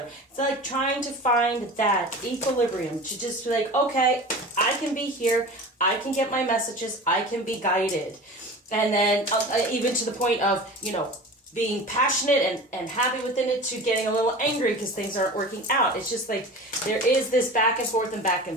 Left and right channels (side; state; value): both; normal; correlation 0.35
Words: It's like trying to find that equilibrium, to just be like, okay, I can be here, I can get my messages, I can be guided. And then even to the point of, being passionate and happy within it, to getting a little angry because things aren't working out. It's just like there is this back and forth and back